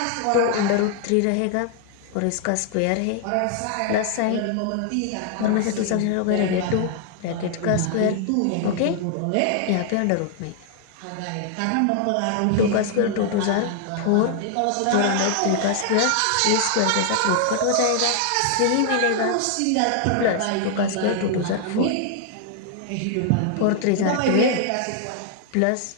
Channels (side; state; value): both; different; correlation 0.00